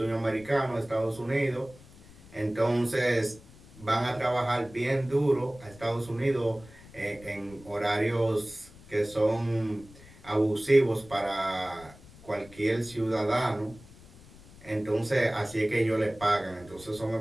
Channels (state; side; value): noise; left; rumble, 21 dB below the sound